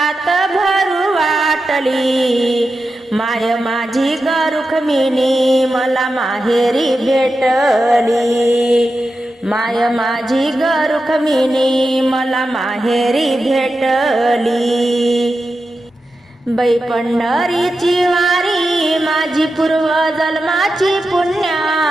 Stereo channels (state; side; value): normal; both; correlation 0.90